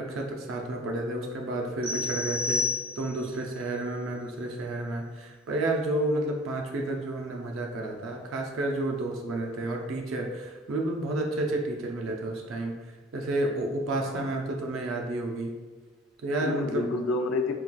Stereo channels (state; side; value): normal; both; correlation 0.45